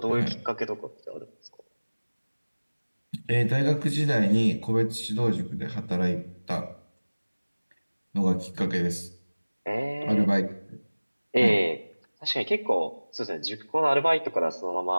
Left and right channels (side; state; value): both; inverted; correlation -1.00